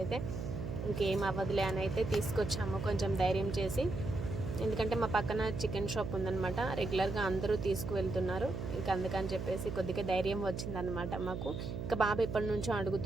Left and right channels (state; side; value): noise; right; hum, 5 dB below the sound